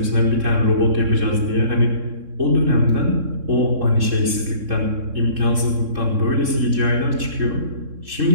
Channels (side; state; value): left; late; 3.7 ms